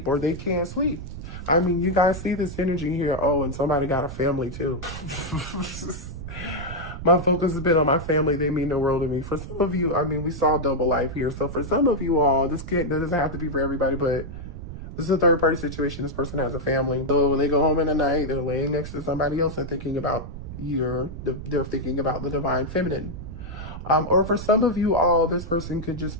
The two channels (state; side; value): noise; right; rumble, 10 dB below the sound